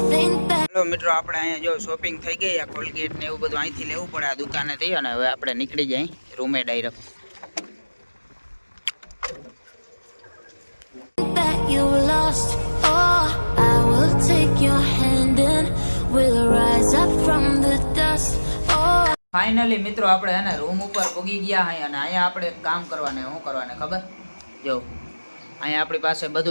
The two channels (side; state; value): both; inverted; correlation -1.00